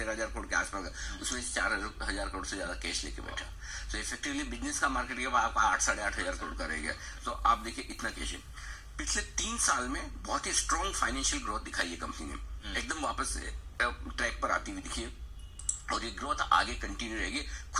करोड़ के आसपास, उसमें 4,000 करोड़ से ज्यादा कैश लेके बैठा। तो इफेक्टिवली बिजनेस का मार्केट कैप आपका 8-8,500 करोड़ का रह गया। तो आप देखिए इतना कैश है। पिछले 3 साल में बहुत ही स्ट्रॉन्ग फाइनेंशियल ग्रोथ दिखाई है कंपनी ने, एकदम वापस ट्रैक पर आती हुई दिखी, और ये ग्रोथ आगे कंटिन्यू रहेगी।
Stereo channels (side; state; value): both; identical; correlation 1.00